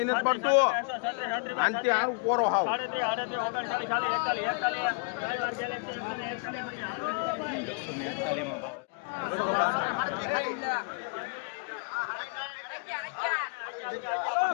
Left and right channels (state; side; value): quieter; right; 36.0 dB